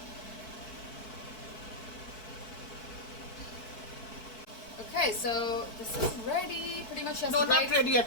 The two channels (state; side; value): late; right; 4.6 ms